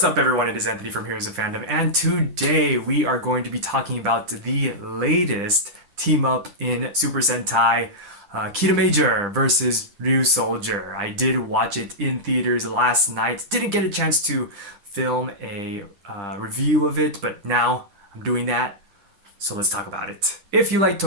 up everyone, it is Anthony from Heroes of Fandom, and today we are going to be talking about the latest team up in Super Sentai, Kiramager versus Ryusoulger. I did watch it in theaters last night, didn't get a chance to film a review of it, but now I'm doing that, so let's talk about it. If you like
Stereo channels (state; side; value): late; left; 10 ms